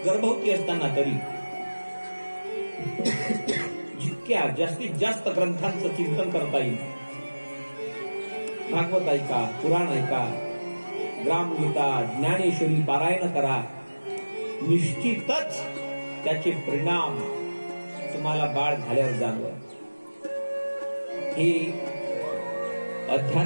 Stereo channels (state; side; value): inverted; both; correlation -1.00